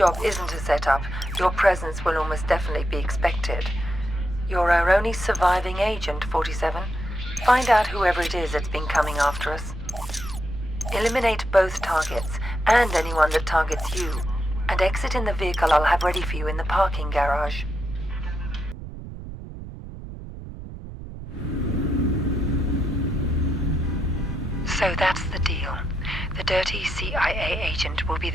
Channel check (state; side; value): noise; right; rumble, 11 dB below the sound